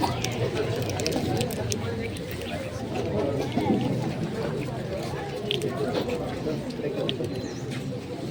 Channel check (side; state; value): both; identical; correlation 1.00